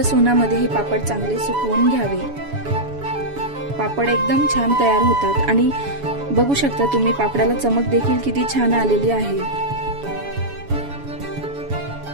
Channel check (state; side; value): late; left; 7.1 ms